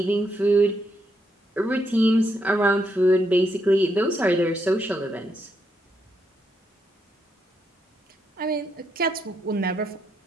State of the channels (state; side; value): normal; both; correlation 0.79